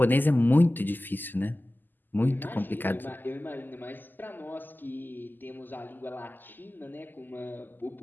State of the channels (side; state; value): right; late; 0.089 ms